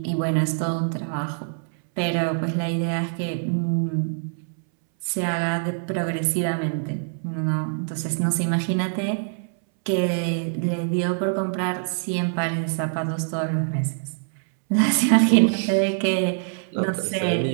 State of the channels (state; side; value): silent; left; 62 dB below the other